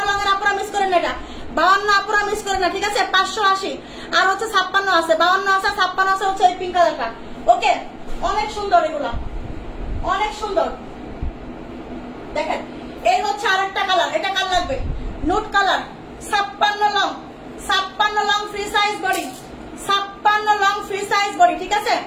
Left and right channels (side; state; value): both; identical; correlation 1.00